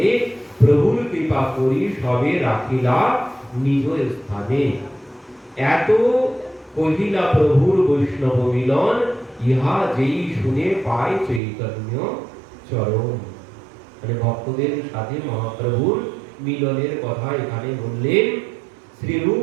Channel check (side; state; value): left; drops out; at 11.4 s